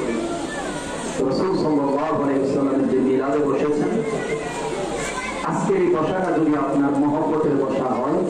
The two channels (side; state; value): both; identical; correlation 1.00